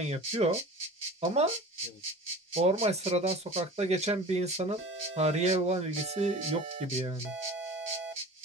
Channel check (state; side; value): normal; both; correlation 0.38